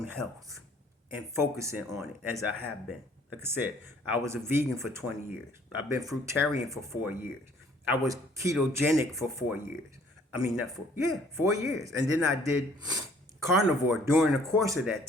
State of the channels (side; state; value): both; normal; correlation 0.58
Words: health and focusing on it as I have been. Like I said, I was a vegan for 20 years. I've been fruitarian for 4 years. I was ketogenic for 4 years. 4 years. And then I did carnivore during the course of that